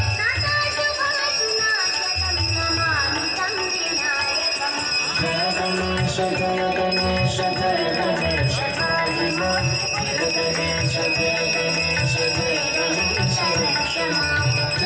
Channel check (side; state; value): both; identical; correlation 1.00